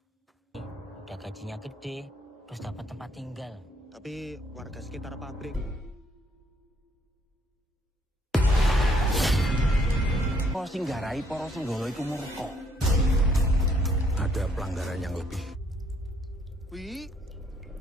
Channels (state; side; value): normal; both; correlation 0.68